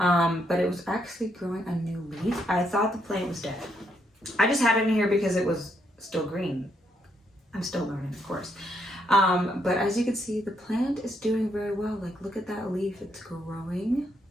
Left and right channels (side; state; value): both; normal; correlation 0.76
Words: it was actually growing a new leaf. I thought the plant was dead. I just had it in here because it was still green. I'm still learning, of course. But as you can see, the plant is doing very well. Like, look at that leaf, it's growing.